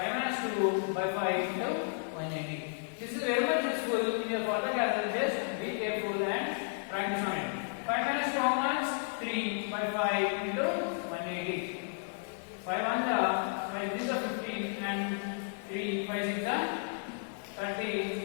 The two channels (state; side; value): silent; right; digital silence